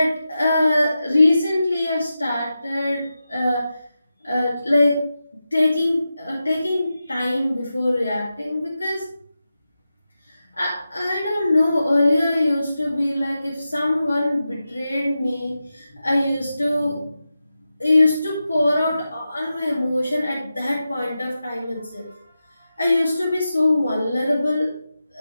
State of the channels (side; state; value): both; inverted; correlation -0.91